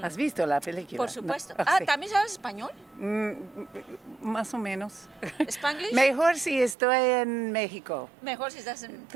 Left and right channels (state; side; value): drops out; left; at 6.8 s